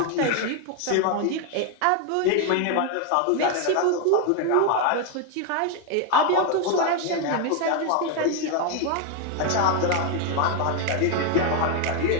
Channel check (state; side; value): different; both; correlation 0.01